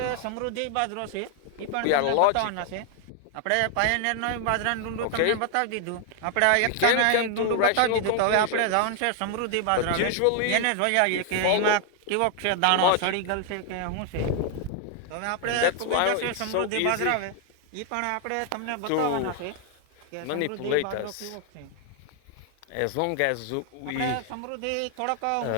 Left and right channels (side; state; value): both; different; correlation 0.00